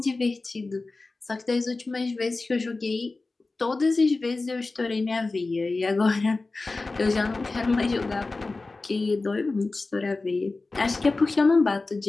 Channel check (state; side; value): quieter; right; 3.5 dB